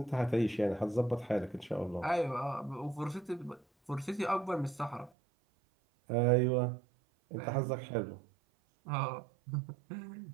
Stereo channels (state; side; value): drops out; left; at 5.1 s